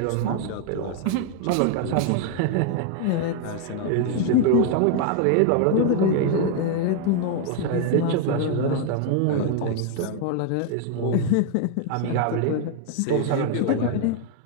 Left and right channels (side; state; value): both; different; correlation 0.00